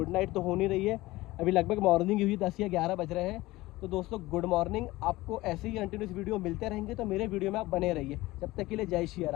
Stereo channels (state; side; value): quieter; right; 18.9 dB